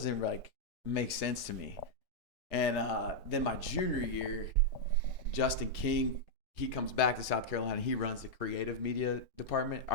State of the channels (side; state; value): both; normal; correlation -0.04